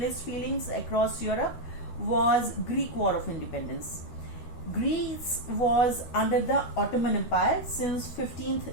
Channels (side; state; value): right; late; 13 ms